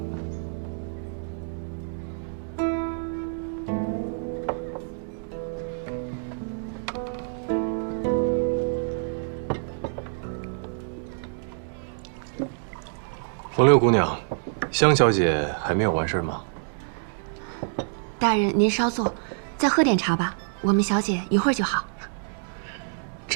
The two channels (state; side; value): silent; left; digital silence